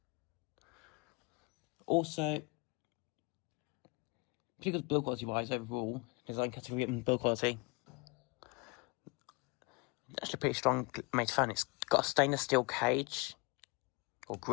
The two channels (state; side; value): quieter; right; 29.4 dB